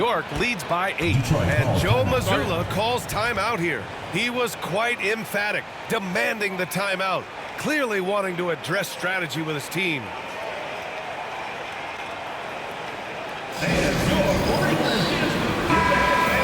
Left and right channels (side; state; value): both; identical; correlation 1.00